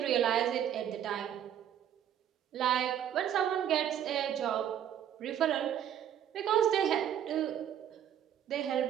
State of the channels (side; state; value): left; quieter; 10.0 dB